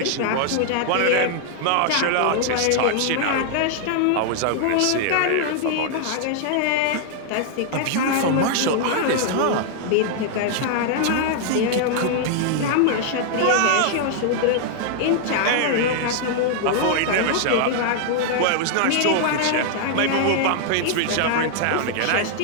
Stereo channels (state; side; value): different; both; correlation 0.00